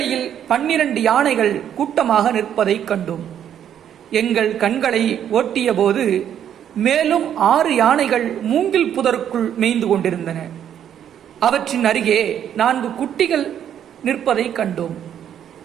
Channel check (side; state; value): left; quieter; 9.7 dB